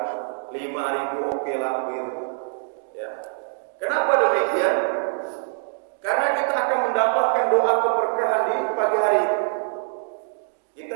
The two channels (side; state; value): left; silent; digital silence